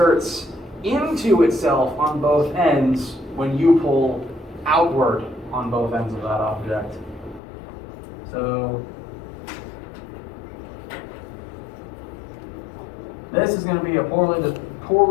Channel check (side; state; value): right; drops out; at 7.4 s